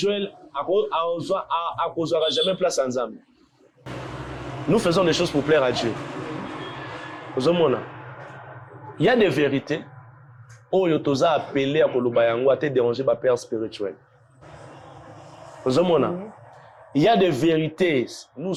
n'aura jamais place ensemble. Nous faisons des choses pour plaire à Dieu. Il y a des vérités. Oh, tu as appelé à Kolobayango à te déranger par Père spirituel. Il y a des vérités. Nous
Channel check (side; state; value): both; identical; correlation 1.00